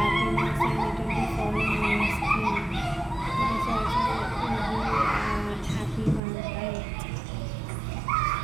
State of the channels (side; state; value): left; drops out; at 6.2 s